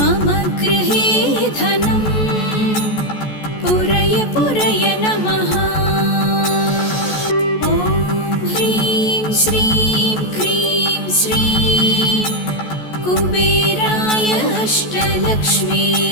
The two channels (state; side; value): late; right; 14 ms